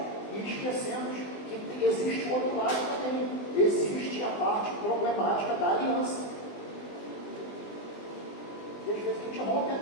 e esquecemos que existe o outro lado também. Existe a parte problemática da aliança. E às vezes a gente rompe a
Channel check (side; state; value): right; late; 20 ms